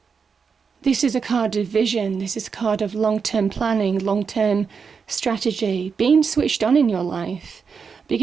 This is a card of vision. This is a card of long-term planning, long-term strategy, being switched on in your life,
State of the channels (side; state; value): left; quieter; 5.8 dB